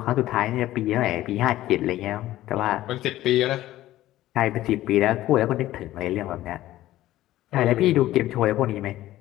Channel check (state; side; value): quieter; right; 14.9 dB